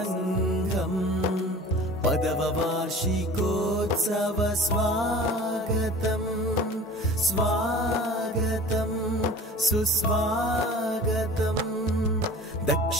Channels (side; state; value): both; normal; correlation 0.42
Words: 10వ వార్షికోత్సవ స్వాగతం స్వాగతం సుస్వాగతం